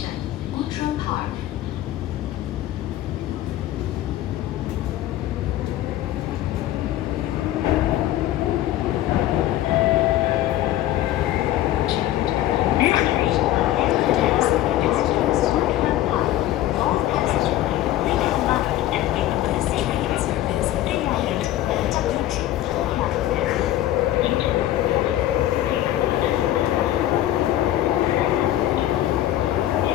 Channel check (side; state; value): right; quieter; 13.7 dB